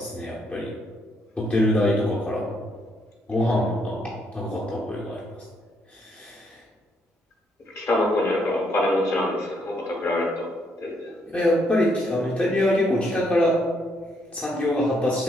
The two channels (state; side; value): normal; both; correlation 0.73